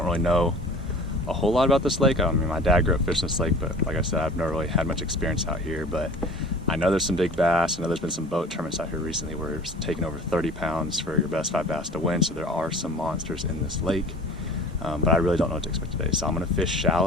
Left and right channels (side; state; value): both; normal; correlation 0.43